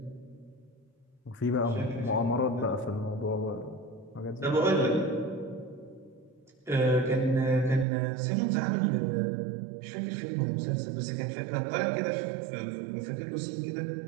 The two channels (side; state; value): left; drops out; at 7.9 s